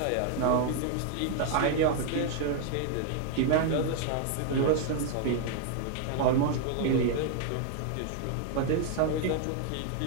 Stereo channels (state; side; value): different; both; correlation 0.00